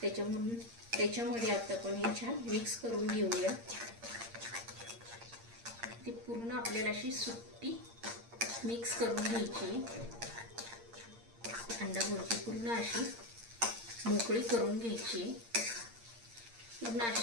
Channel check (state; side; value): late; left; 8.7 ms